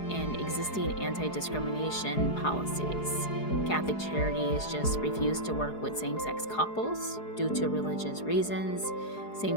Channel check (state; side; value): late; right; 4.8 ms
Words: and existing anti-discrimination policies, Catholic Charities just refused to work with same-sex couples due to religious reasons.